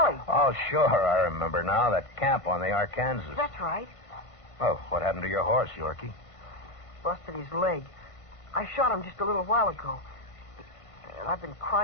Oh, sure, I remember now. That camp on the Arkansas. That's right. Oh, what happened to your horse, Yorkie? Busted his leg. I shot him just a little while ago. And I've been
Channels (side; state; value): right; late; 1.5 ms